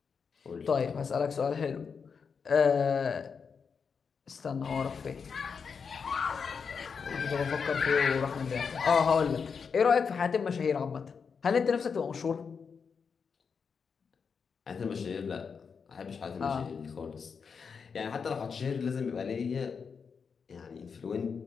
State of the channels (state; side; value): quieter; right; 5.9 dB